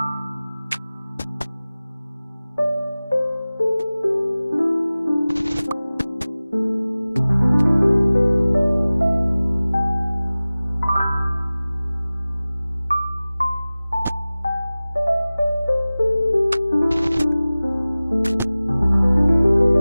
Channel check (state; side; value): inverted; both; correlation -0.98